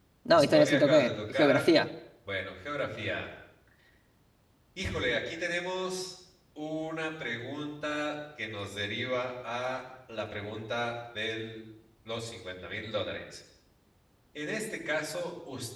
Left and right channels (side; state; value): both; identical; correlation 1.00